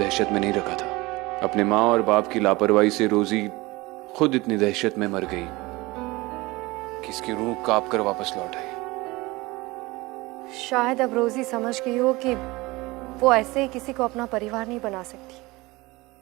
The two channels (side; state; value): left; quieter; 21.9 dB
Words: में नहीं रखा था। अपने माँ और बाप की लापरवाही से रोजी खुद इतनी दहशत में मर गई कि इसकी रूह कांप कर वापस लौट आई। शायद अब रोजी समझ गई हो कि वो ऐसे ही किसी को अपना परिवार नहीं बना सकती।